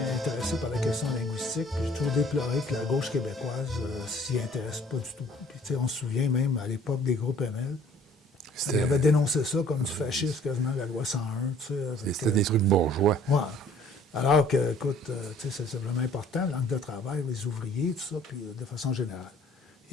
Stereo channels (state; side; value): normal; both; correlation 0.55